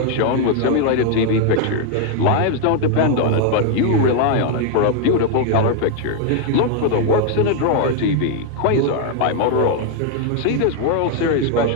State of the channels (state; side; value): different; both; correlation 0.00